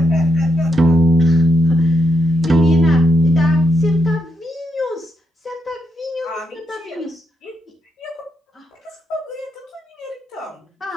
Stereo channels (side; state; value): both; normal; correlation 0.81